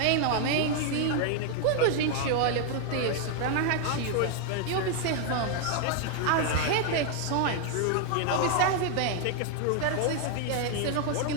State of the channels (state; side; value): different; both; correlation 0.00